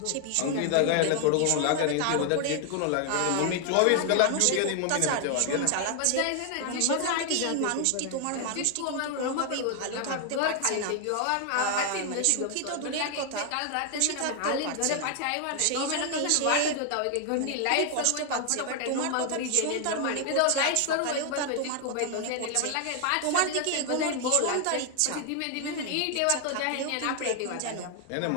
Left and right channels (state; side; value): different; both; correlation 0.00